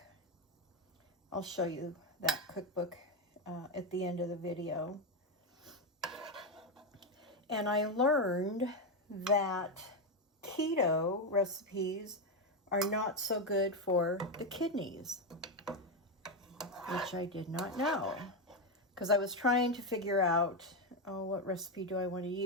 I'll show you that cookbook at the end of the video. And I learned that keto recipes are not so good for the kidneys, which I did not know. Because I was trying to figure out, what recipe do I want to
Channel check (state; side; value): normal; both; correlation 0.08